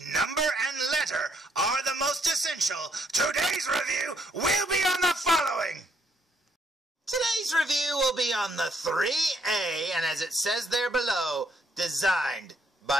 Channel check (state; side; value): normal; both; correlation 0.71